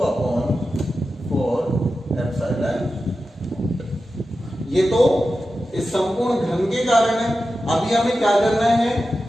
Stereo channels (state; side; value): normal; both; correlation 0.92